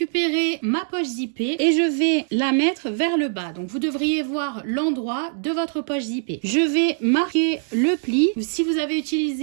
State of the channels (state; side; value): silent; left; 64 dB below the other